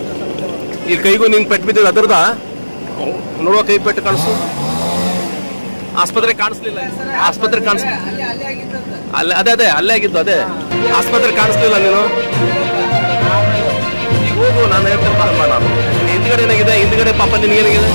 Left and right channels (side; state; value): both; inverted; correlation -1.00